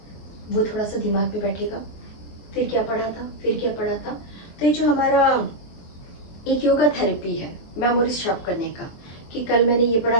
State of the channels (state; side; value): late; right; 23 ms